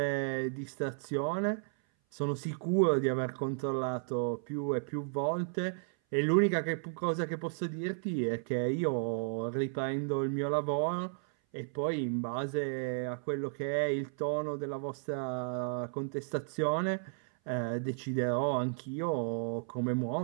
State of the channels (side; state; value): left; silent; 55 dB below the other